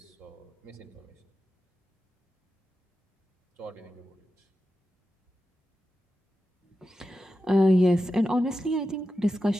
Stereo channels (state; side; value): normal; both; correlation 0.91